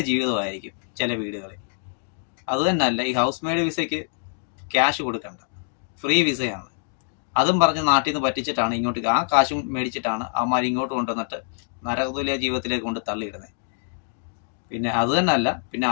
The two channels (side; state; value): right; silent; digital silence